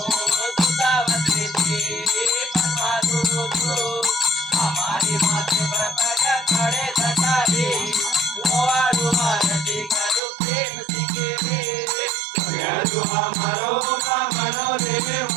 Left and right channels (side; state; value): left; drops out; at 10.2 s